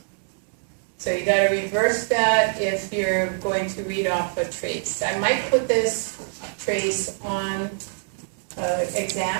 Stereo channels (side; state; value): left; silent; digital silence